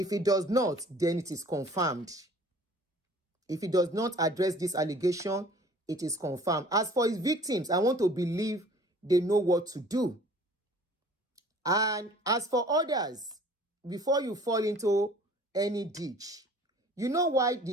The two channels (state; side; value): normal; both; correlation 0.50